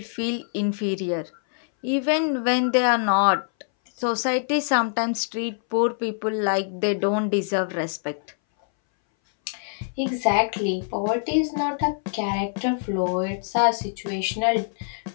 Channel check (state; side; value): silent; right; 61 dB below the other